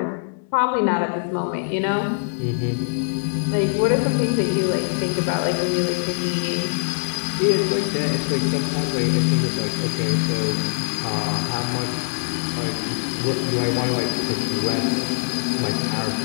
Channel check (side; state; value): right; silent; digital silence